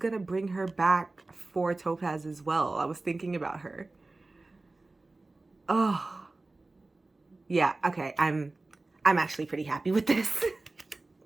bring her back for Topaz as well. I was thinking about her. Oh. Yeah, okay. I'm actually pretty happy with this.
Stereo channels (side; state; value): left; quieter; 3.2 dB